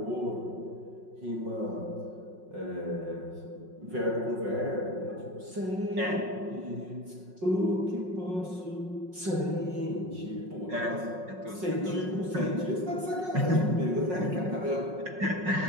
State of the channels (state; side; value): late; left; 5.5 ms